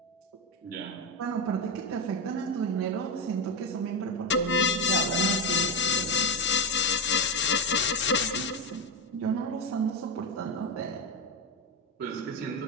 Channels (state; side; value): normal; both; correlation 0.10